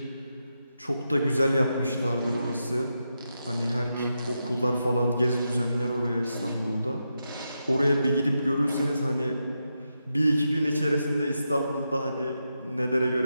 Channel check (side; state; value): both; inverted; correlation -0.86